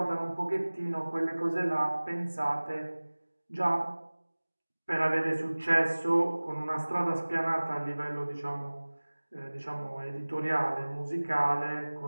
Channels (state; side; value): inverted; both; correlation -1.00